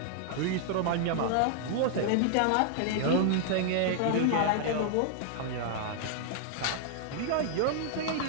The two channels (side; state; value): both; different; correlation 0.00